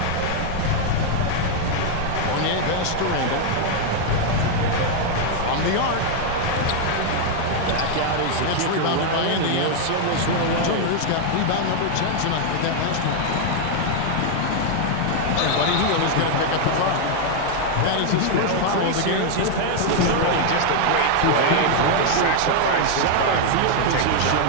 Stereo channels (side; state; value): both; different; correlation 0.00